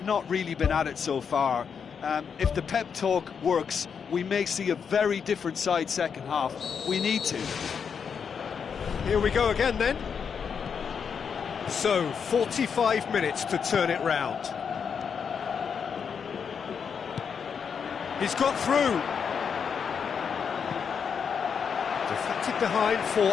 not really been at it so far. If the pep talk works, we may see a very different side second half. We need to. Here we go again then. So, 45 minutes to turn it round. He's got through. Deflected behind for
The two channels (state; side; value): quieter; right; 6.7 dB